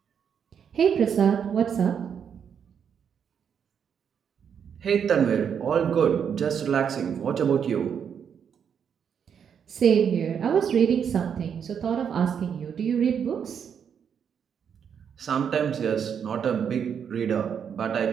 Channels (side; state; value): left; quieter; 7.6 dB